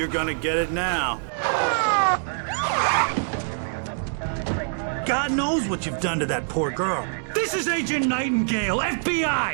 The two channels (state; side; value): silent; left; digital silence